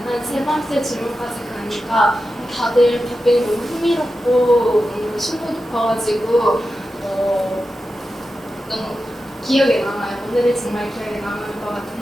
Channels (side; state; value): both; normal; correlation 0.91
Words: 한 세 번째 질문까지 가니까 다들 답변이 너무 흥미롭고 너무 심도 깊어가지고 너무 기억에 남아요. 오늘이 정말 기억에 남을 것 같은